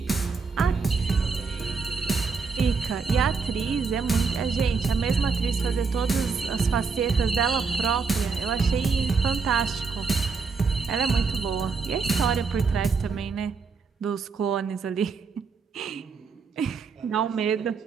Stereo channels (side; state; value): left; quieter; 5.0 dB